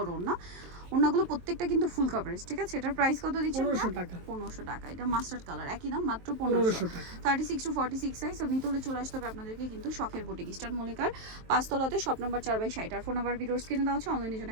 ওড়না। ওড়নাগুলো প্রত্যেকটা কিন্তু ফুল কভারেজ, ঠিক আছে? এটার প্রাইস কত দিচ্ছেন? 1500 টাকা। 1500 টাকা। এটা মাস্টার্ড কালার, একই দাম, মাত্র 1500 1500 টাকা। 36 টু 46 সাইজ। তো নিতে হলে চলে আসতে হবে আপনাদেরকে কিন্তু শখের বুটিক, ইস্টার্ন মল্লিকার 5 তলাতে, শপ নাম্বার 4/60। আর ফোন নাম্বার ভিডিওর স্ক্রিনে দেওয়া আছে, অনলাইনে জন্য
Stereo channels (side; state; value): left; late; 23 ms